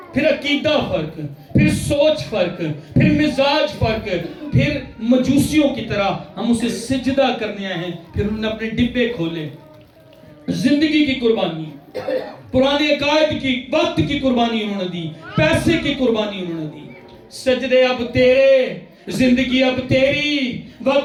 پھر عقیدہ فرق, پھر سوچ فرق, پھر مزاج فرق, پھر مجوسیوں کی طرح ہم اسے سجدہ کرنے آئے ہیں. پھر انہوں نے اپنے ڈبے کھولے, زندگی کی قربانی, پرانے عقائد کی, وقت کی قربانی انہوں نے دی, پیسے کی قربانی انہوں نے دی. سجدے اب تیرے, زندگی اب تیری,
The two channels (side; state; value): both; identical; correlation 1.00